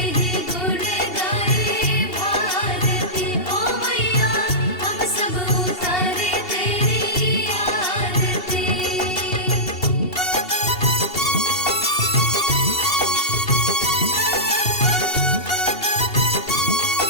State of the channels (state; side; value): late; right; 2.7 ms